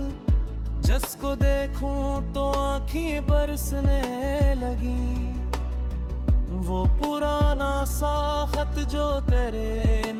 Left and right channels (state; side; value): identical; both; correlation 1.00